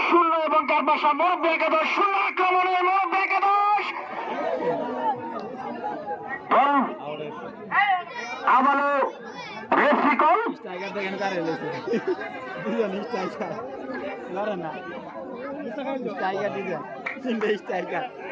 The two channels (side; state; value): both; identical; correlation 1.00